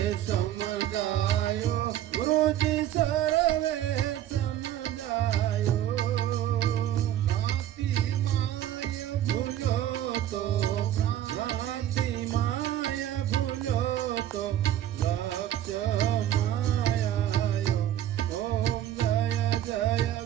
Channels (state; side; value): quieter; left; 11.9 dB